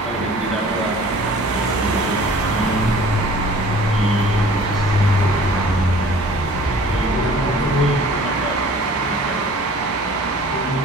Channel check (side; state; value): both; normal; correlation 0.49